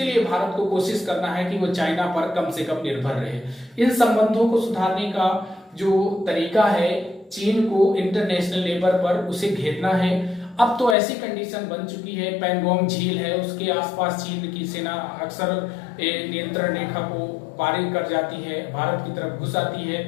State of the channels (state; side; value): drops out; right; at 11.0 s